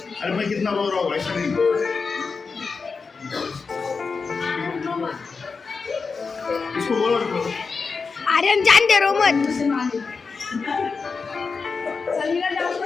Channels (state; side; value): quieter; right; 4.8 dB